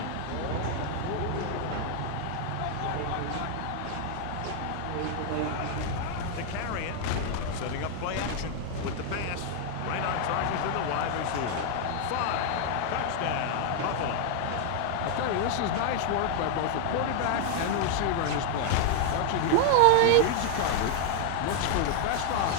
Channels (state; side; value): different; both; correlation 0.00